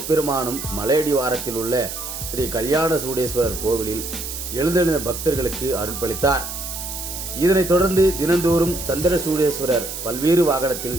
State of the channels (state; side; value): noise; right; hiss, 7 dB below the sound